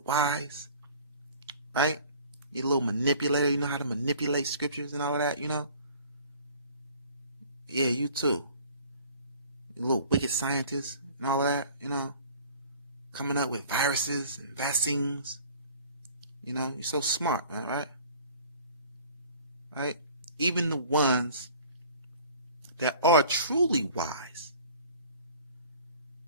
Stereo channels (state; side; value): inverted; both; correlation -0.49